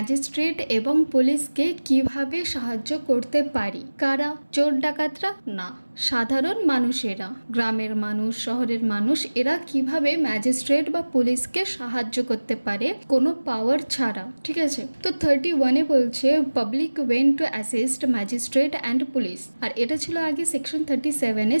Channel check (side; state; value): both; inverted; correlation -1.00